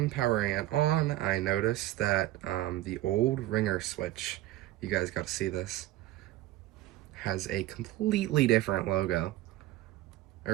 powering it on, I noticed that the old ringer switch, you guys got to see this, has a completely different logo,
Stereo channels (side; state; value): left; quieter; 15.5 dB